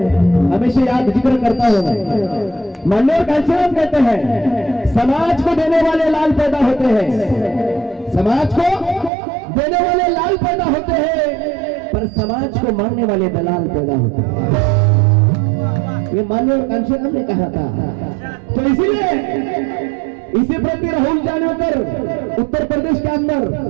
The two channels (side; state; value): left; drops out; at 9.1 s